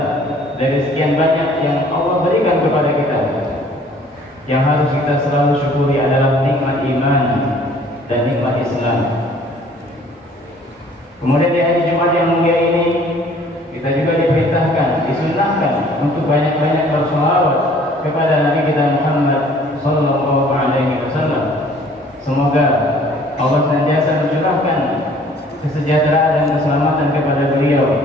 dari sekian banyak yang Allah berikan kepada kita, yang harus kita selalu syukuri adalah nikmat iman dan nikmat Islam. Kemudian di hari Jumat yang mulia ini, kita juga diperintahkan, disunahkan untuk banyak-banyak bersolawat kepada Nabi kita Muhammad sallallahu alaihi wasallam. Semoga Allah senantiasa mencurahkan kesejahteraan dan keselamatan kepada beliau,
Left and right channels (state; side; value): normal; both; correlation 0.55